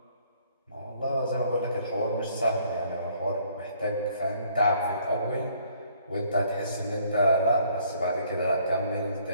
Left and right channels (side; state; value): both; inverted; correlation -0.62